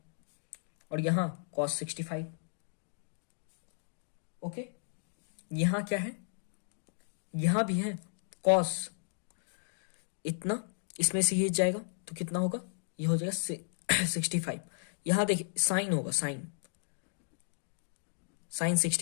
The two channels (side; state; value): right; silent; digital silence